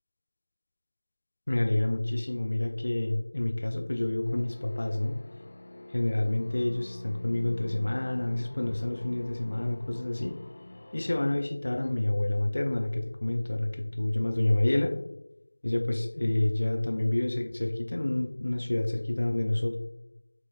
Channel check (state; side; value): inverted; both; correlation -1.00